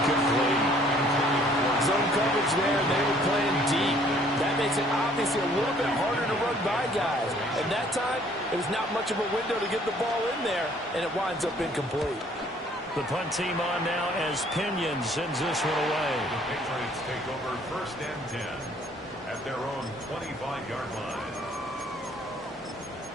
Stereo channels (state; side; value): normal; both; correlation 0.60